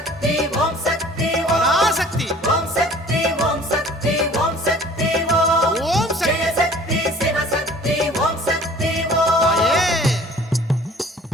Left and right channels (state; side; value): normal; both; correlation 0.50